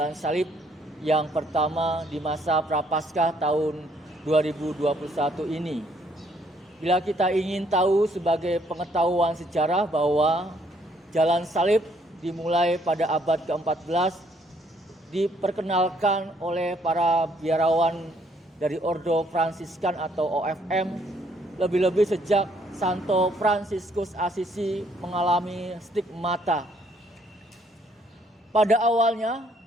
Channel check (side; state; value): both; normal; correlation 0.67